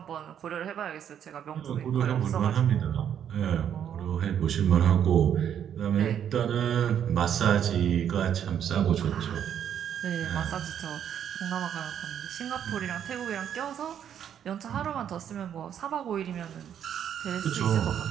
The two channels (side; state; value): left; quieter; 9.2 dB